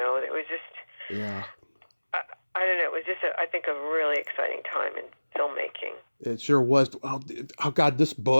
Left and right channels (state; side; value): inverted; both; correlation -1.00